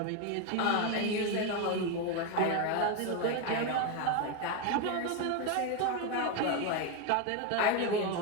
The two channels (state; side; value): different; both; correlation 0.02